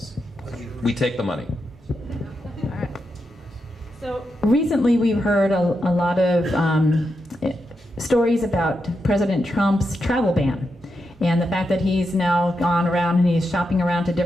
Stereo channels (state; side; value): normal; both; correlation 0.85